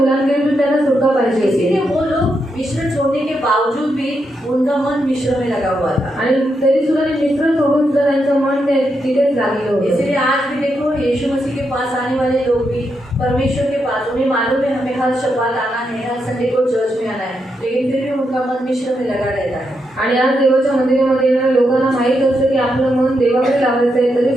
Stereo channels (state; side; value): normal; both; correlation 0.83